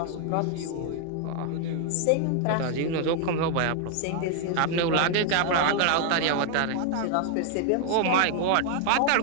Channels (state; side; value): different; both; correlation 0.00